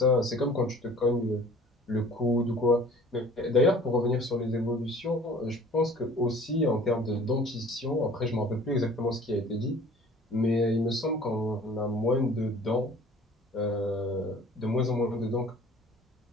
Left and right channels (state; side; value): normal; both; correlation 0.49